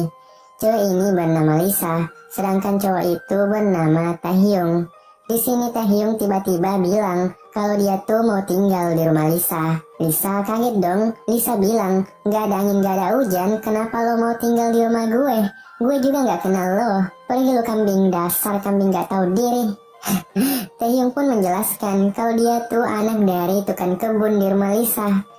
Cewek ini bernama Lisa, sedangkan cowok itu bernama Taehyung. Di sini Taehyung tiba-tiba bilang kalau dia tuh mau tinggal di rumah Lisa. Lisa kaget dong. Lisa bilang, gak ada angin gak ada hujan, kenapa lo mau tinggal di rumah gue? Gue juga gak kenal lo. Pergi lo kambing, dasar kambing gak tahu diri. Taehyung pun menjelaskan kalau dia tuh anak dari tukang kebun di rumah Lisa.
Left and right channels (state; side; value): identical; both; correlation 1.00